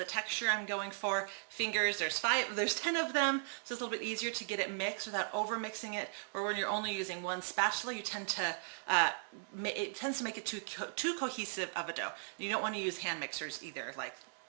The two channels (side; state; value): left; silent; digital silence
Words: texture I'm going for. Fingers, there's 10 of them, so it's a little bit easier to get it mixed without over mixing it, or when you're only using one spatula, it tends to make it too cohesive of a dough. You don't want to use hand mixers either. Like,